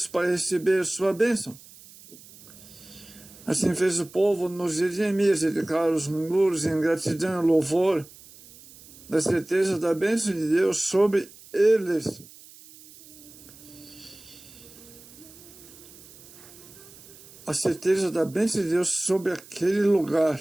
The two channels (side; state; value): right; noise; hiss, 21 dB below the sound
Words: para receber sua bênção. Assim fez o povo nos dias de Neemias, dedicar os muros em gratidão e louvor, da certeza da bênção de Deus sobre eles. A certeza da bênção de Deus sobre aquele lugar.